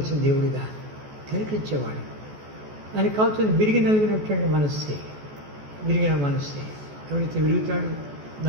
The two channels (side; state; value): left; late; 14 ms